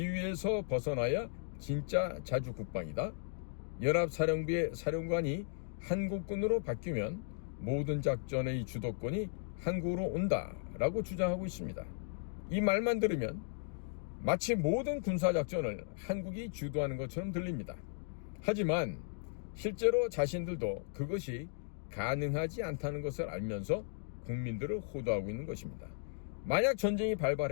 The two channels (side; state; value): right; silent; digital silence